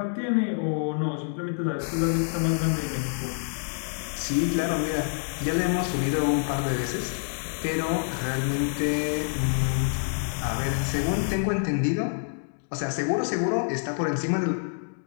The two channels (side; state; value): right; silent; digital silence